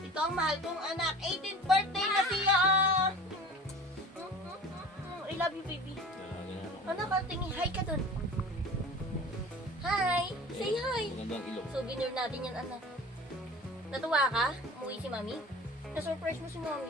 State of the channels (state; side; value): normal; both; correlation 0.40